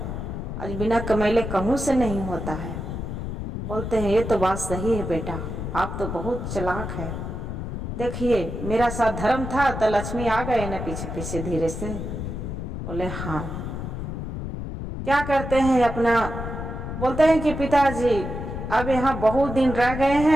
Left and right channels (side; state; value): left; noise; rumble, 5 dB below the sound